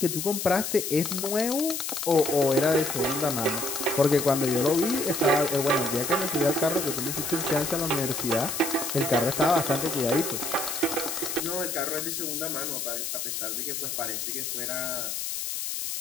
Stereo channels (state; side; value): noise; left; hiss, 3 dB below the sound